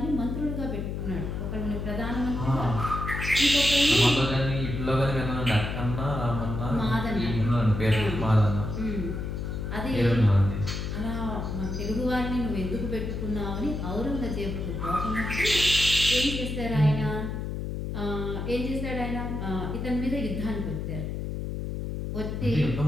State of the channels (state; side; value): noise; left; hum, 4 dB below the sound